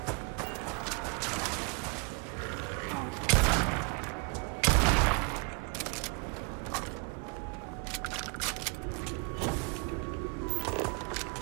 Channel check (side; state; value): left; quieter; 34.0 dB